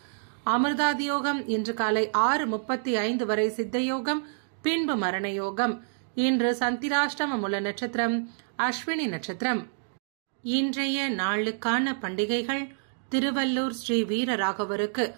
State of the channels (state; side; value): silent; left; digital silence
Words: அமிர்தாதியோகம் இன்று காலை 6:35 வரை சித்தயோகம், பின்பு மரணயோகம். இன்று சந்திராஷ்டம மூல நட்சத்திரம் அஸ்வினி நட்சத்திரம். இன்றைய நாளுக்கான பண்டிகைகள்: திருவள்ளூர் ஸ்ரீ வீரராகவருக்கு